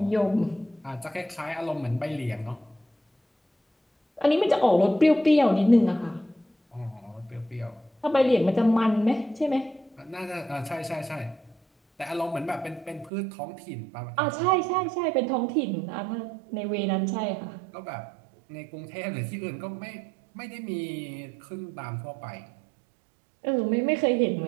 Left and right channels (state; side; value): drops out; left; at 13.1 s